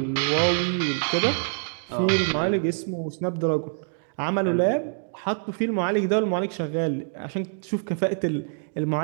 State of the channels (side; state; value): left; silent; 61 dB below the other